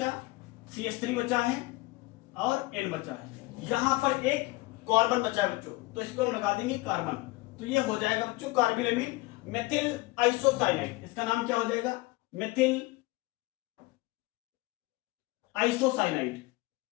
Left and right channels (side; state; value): right; quieter; 22.1 dB